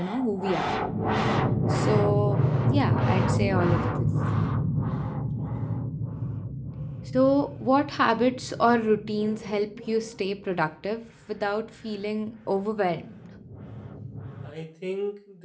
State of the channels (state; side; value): identical; both; correlation 1.00